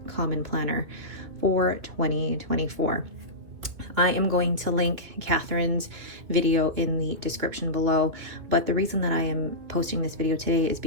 Common Planner for 2024. I am going to link Catherine's video in the description below, but the reason that I am posting this video today is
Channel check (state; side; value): late; left; 2.6 ms